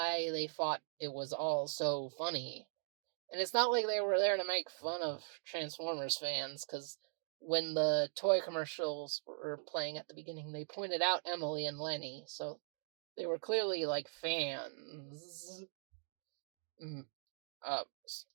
they thought it was all so funny. And it's not like they were there to make fun of Transformers fans, because when the toy commercials were playing at the beginning, they pointed out Emily and Lenny, so they were clearly, like, fans.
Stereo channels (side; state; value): left; silent; digital silence